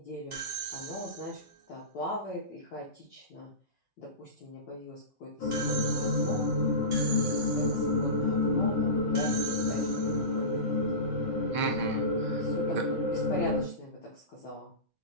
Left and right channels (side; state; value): right; late; 5.3 ms